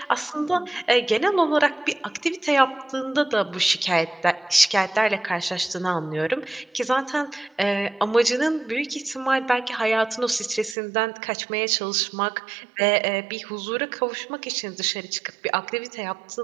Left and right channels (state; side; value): drops out; left; at 10.8 s